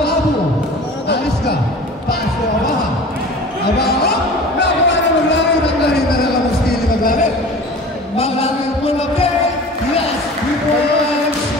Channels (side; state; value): both; normal; correlation 0.40